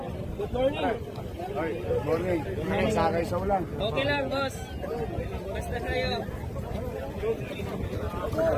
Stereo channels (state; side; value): identical; both; correlation 1.00